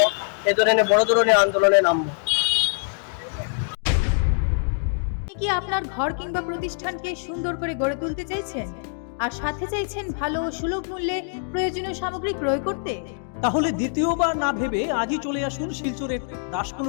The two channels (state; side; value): silent; right; digital silence